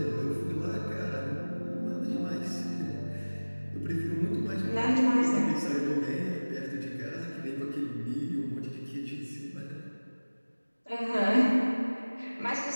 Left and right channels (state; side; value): inverted; both; correlation -1.00